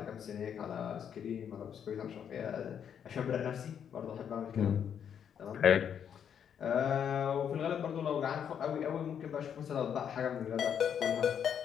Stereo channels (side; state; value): right; quieter; 8.3 dB